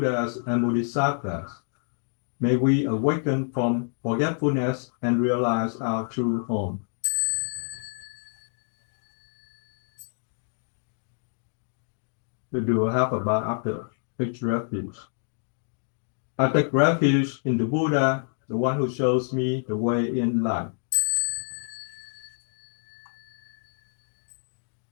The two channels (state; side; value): silent; right; 60 dB below the other